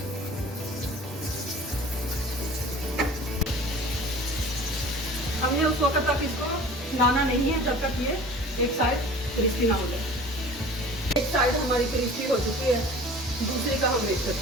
हमने उस वक्त तक इसको हिलाना नहीं है जब तक ये एक साइड क्रिस्पी ना हो जाए। एक साइड हमारी क्रिस्पी हो चुकी है, दूसरी का हम वेट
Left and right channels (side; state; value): both; normal; correlation 0.43